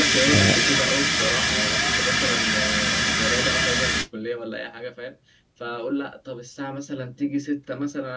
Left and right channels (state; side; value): identical; both; correlation 1.00